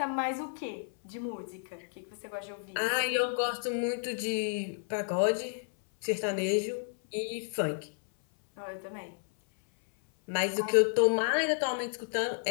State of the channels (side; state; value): right; silent; 57 dB below the other